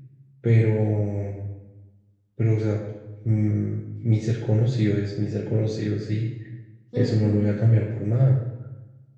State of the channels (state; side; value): identical; both; correlation 1.00